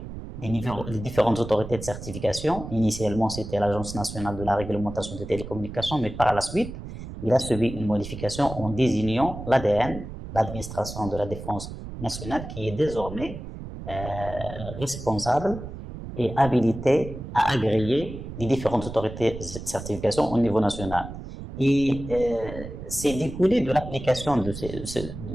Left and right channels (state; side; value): noise; right; rumble, 10 dB below the sound